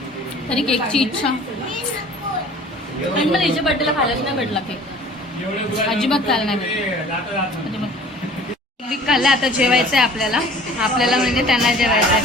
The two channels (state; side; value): normal; both; correlation 0.48